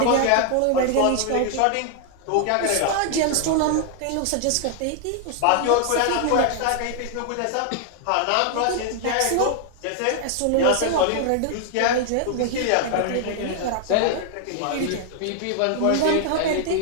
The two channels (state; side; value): different; both; correlation 0.00